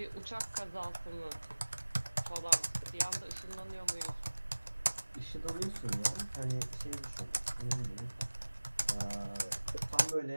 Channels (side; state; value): both; inverted; correlation -1.00